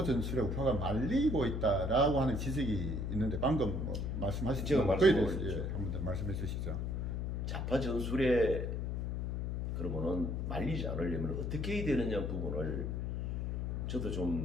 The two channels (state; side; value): noise; left; hum, 1 dB below the sound